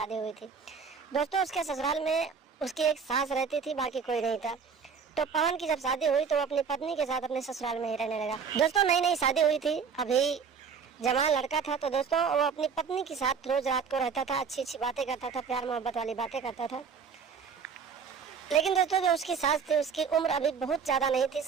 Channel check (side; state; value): left; quieter; 6.1 dB